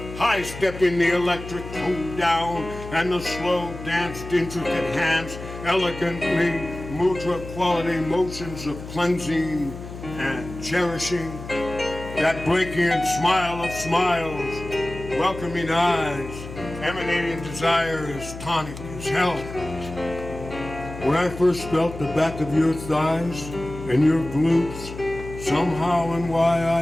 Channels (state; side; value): noise; left; hum, 12 dB below the sound